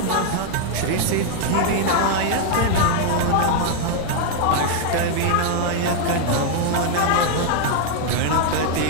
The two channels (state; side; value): different; both; correlation 0.00